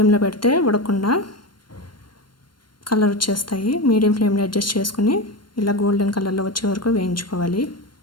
పెడితే ఉడకకుండా కలర్ వచ్చేస్తాయి. మీడియం ఫ్లేమ్లో అడ్జస్ట్ చేసుకుని ఇలా గోల్డెన్ కలర్లో వచ్చే వరకు వేయించుకోవాలి.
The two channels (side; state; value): right; late; 0.72 ms